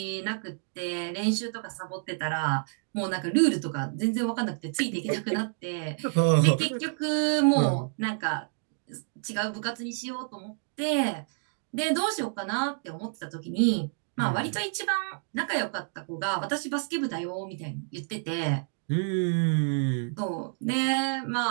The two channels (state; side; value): silent; left; 59 dB below the other